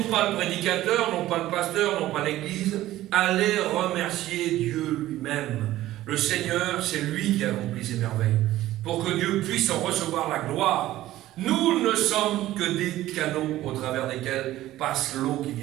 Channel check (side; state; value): left; quieter; 15.0 dB